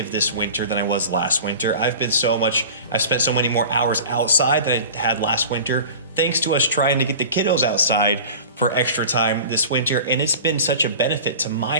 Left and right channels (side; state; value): both; inverted; correlation -0.37